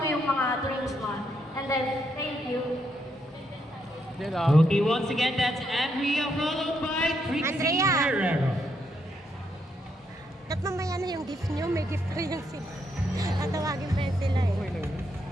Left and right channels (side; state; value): both; normal; correlation 0.77